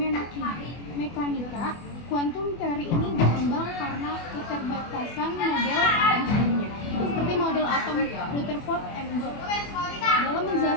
mekanika kuantum. Teori ini berkembang karena keterbatasan model atom sebelumnya, seperti model atom Rutherford and Bohr, dalam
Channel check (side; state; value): right; late; 24 ms